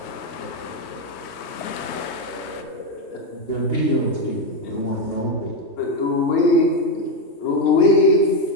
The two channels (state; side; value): late; right; 3.2 ms